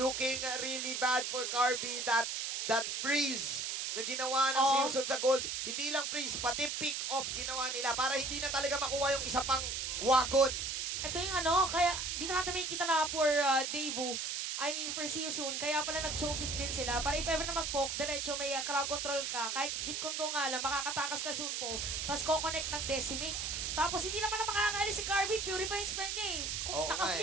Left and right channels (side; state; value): right; noise; hiss, 2 dB below the sound